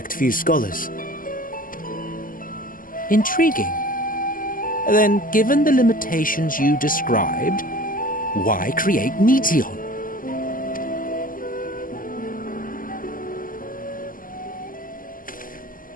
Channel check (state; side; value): late; right; 0.41 ms